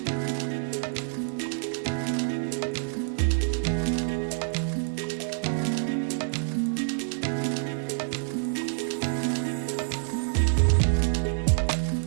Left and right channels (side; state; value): left; silent; digital silence